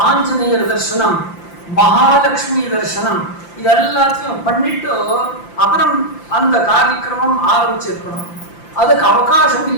ஆஞ்சநேயர் தர்சனம், மகாலட்சுமி தர்சனம், இது எல்லாத்தையும் பண்ணிட்டு அப்புறம் அந்த காரியக்கிரமம் ஆரம்பிச்சிருக்கணும். அதுக்கு அவகாசம்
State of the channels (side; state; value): right; late; 5.8 ms